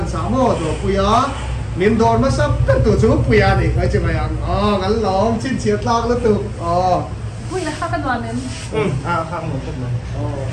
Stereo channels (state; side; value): identical; both; correlation 1.00